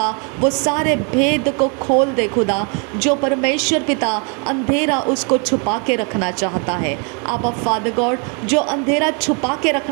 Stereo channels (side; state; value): left; quieter; 36.1 dB